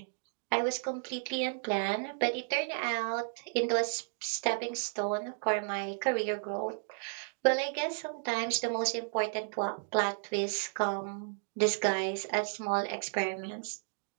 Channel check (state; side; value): silent; left; digital silence